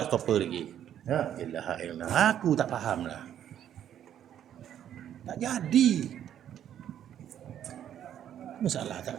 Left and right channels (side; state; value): left; quieter; 10.3 dB